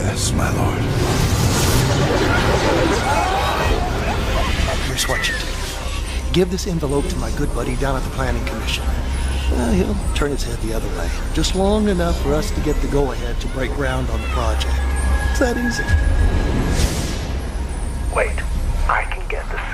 my lord. Here's what you do. Give this envelope to my good buddy down at the Planning Commission. He'll turn his head the other way, just long enough for us to get the go-ahead to break ground on the project. that easy. Wait, I can get the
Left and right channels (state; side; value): identical; both; correlation 1.00